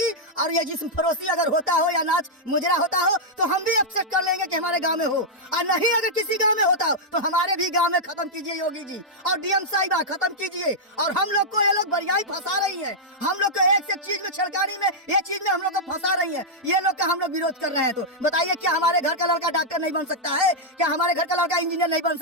और ये जिस्म फरोशी अगर होता हो या नाच मुजरा होता हो तो हम भी एक्सेप्ट कर लेंगे कि हमारे गांव में हो। और नहीं अगर किसी गांव में होता हो तो हमारे भी गांव में खत्म कीजिए योगी जी और डीएम साहिबा खत्म कीजिए। और हम लोग को ये लोग बढ़िया फंसा रही है, हम लोग को एक से एक चीज में छलकानी में ये चीज में हम लोग को फंसा रही है, ये लोग का हम लोग विरोध कर रहे हैं। तो बताइए क्या हमारे घर का लड़का डॉक्टर नहीं बन सकता है? क्या हमारे घर का लड़का इंजीनियर नहीं बन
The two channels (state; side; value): normal; both; correlation -0.06